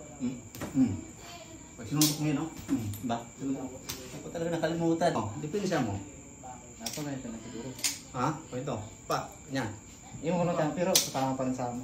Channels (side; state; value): both; identical; correlation 1.00